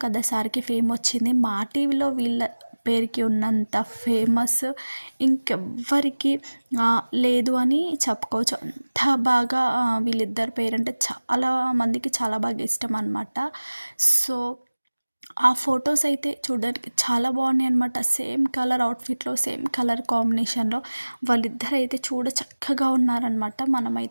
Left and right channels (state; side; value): inverted; both; correlation -1.00